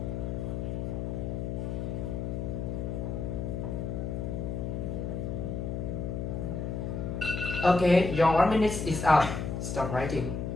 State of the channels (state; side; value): noise; left; hum, 3 dB below the sound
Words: Okay, your 1 minute is up. Stop writing.